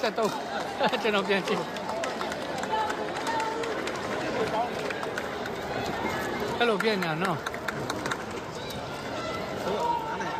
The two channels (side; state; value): both; identical; correlation 1.00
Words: ကျွန်တော်ပြန်ကြည့်အဲ့လိုပြန်ညာနော်